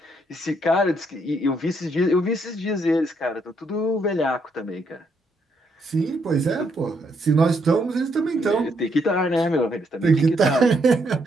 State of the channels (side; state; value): both; normal; correlation 0.74